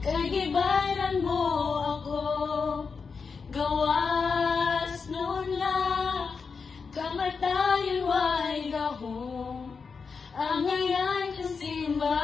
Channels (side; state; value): right; quieter; 5.3 dB